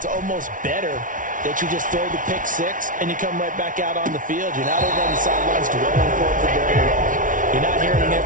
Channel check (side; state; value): left; late; 0.38 ms